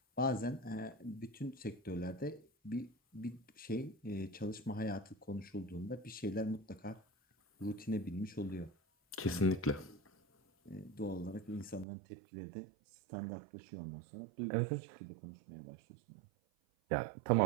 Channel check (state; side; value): drops out; left; at 11.9 s